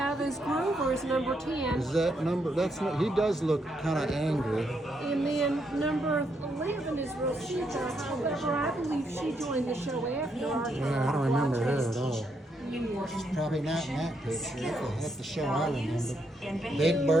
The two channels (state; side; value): normal; both; correlation 0.77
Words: is Grover's number 10. Is that number? That's not, he does look kind of angry. And then number 11 is Rosita. However, I believe she joined the show after our Yeah, I don't remember her at all. She's probably not in that picture. That's the show I remember. Big